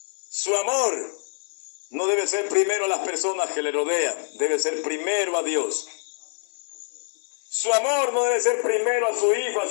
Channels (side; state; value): right; silent; digital silence